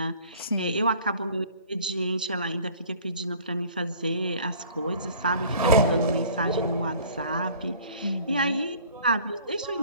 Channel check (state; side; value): inverted; both; correlation -0.51